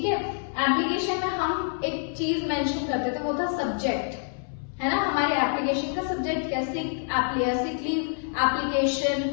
है। एप्लीकेशन में हम एक चीज मेंशन करते थे, वो था सब्जेक्ट, है ना। हमारे एप्लीकेशन का सब्जेक्ट क्या, सिक लीव एप्लीकेशन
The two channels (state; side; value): silent; right; 60 dB below the other